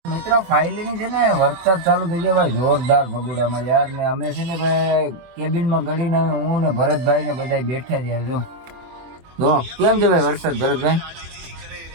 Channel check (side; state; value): left; late; 24 ms